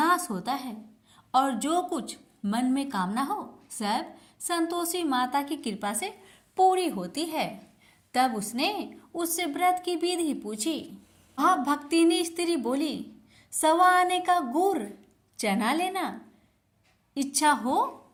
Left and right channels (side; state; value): both; identical; correlation 1.00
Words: होता है और जो कुछ मन में कामना हो सब संतोषी माता की कृपा से पूरी होती है। तब उसने उससे व्रत की विधि पूछी। वह भक्तिनी स्त्री बोली, 1.25 आने का गुड़ चना लेना, इच्छा हो